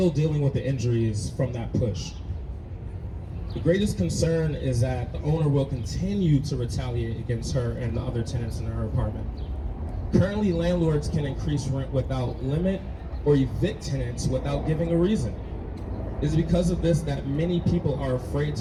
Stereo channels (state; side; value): identical; both; correlation 1.00